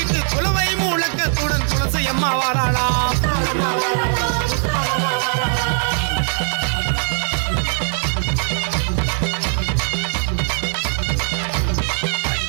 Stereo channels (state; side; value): silent; left; 65 dB below the other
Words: குலவை முழக்கத்துடன் துளசி அம்மா வாராளாம்